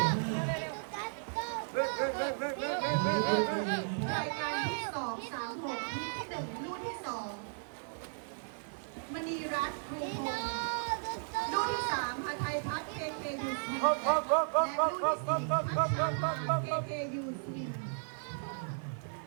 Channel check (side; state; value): left; silent; 54 dB below the other